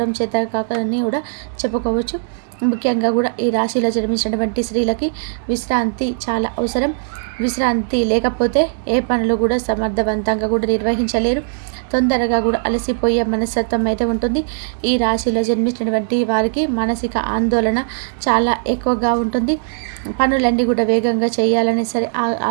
చేత కాకని కూడా చెప్పుకోవచ్చు. ముఖ్యంగా కూడా ఈ రాశిలో జన్మించినటువంటి స్త్రీలకి విశ్రాంతి చాలా అవసరం. విశ్రాంతి లేకపోతే ఏ పనులు కూడా సమర్థవంతంగా కూడా నిర్వహించలేరు. తొందరగా కూడా అలసిపోయే మనస్తత్వం అయితే ఉంటుంది. ఈ రాశిలో జన్మించినటువంటి వారికి మానసిక ఆందోళన చాలా ఎక్కువగా ఉంటుంది. పనులన్నీ కూడా వేగంగా చేయాలని సరే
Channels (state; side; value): silent; left; digital silence